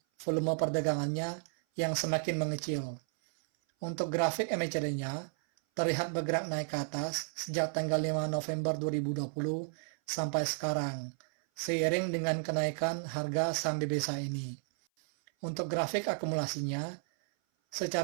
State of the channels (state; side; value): silent; left; 56 dB below the other